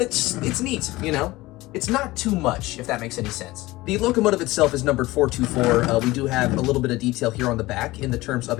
it's neat, you know? It's not too much, if that makes any sense. The locomotive itself is numbered 424. We do have a little bit of detail here on the back in the terms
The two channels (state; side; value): quieter; right; 19.2 dB